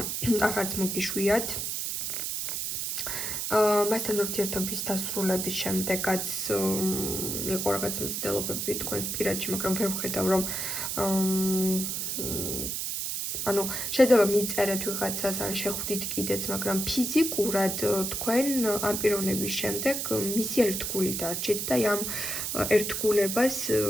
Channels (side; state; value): right; noise; hiss, 2 dB below the sound